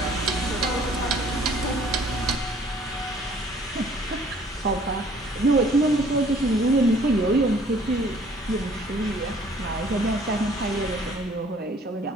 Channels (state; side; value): normal; both; correlation 0.57